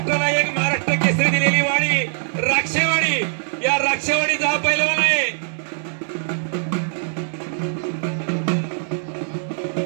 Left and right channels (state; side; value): silent; left; 65 dB below the other